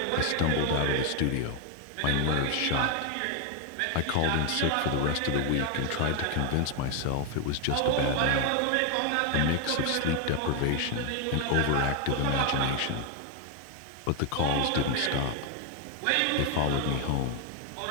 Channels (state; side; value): different; both; correlation 0.01